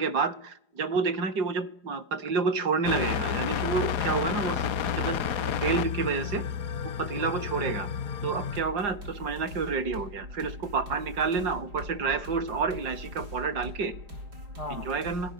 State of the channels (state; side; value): late; left; 4.9 ms